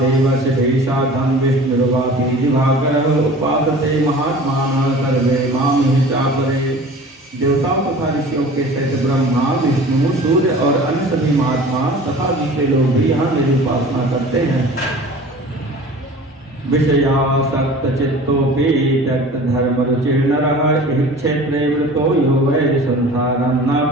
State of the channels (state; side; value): normal; both; correlation 0.42